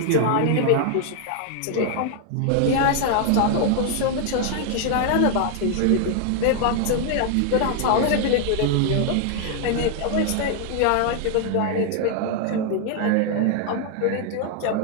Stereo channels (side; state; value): both; different; correlation 0.00